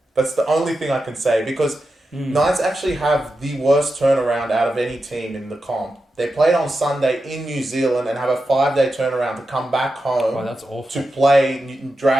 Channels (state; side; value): normal; both; correlation 0.90